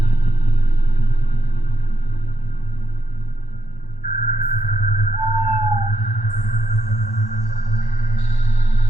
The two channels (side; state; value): right; late; 1.1 ms